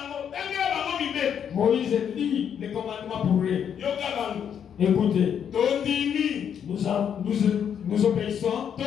Tangela bango mibeko. Moïse lit les commandements pour eux. Yoka bango. Écoutez, Tondimi. nous obéissons,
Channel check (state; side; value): quieter; right; 8.3 dB